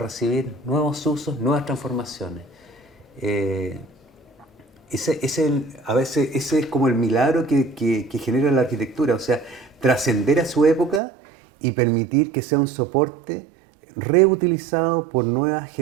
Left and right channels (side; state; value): left; drops out; at 11.0 s